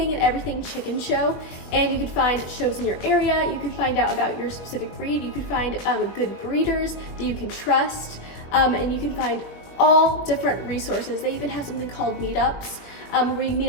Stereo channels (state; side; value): late; right; 21 ms